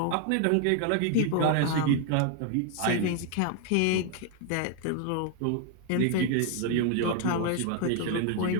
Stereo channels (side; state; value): both; different; correlation 0.00